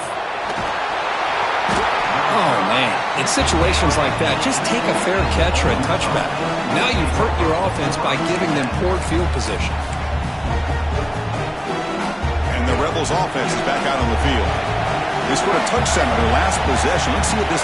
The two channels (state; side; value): identical; both; correlation 1.00